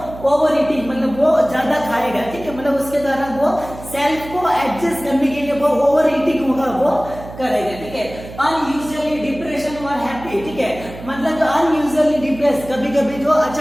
ओवर ईटिंग, मतलब वो ज्यादा खाएगा, ठीक है, मतलब उसके द्वारा वो सेल्फ को एडजस्ट करने के लिए वो ओवर ईटिंग होगा वो करेगा, ठीक है। अनयूजुअली डिप्रेशन और हैप्पी, ठीक है, मतलब जो अनयूजुअली डिप्रेस कभी कभी जो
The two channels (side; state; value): right; noise; hum, 14 dB below the sound